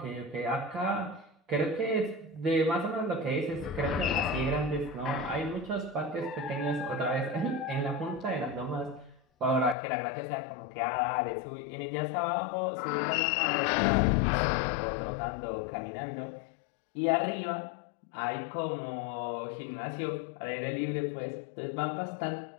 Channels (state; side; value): drops out; right; at 9.8 s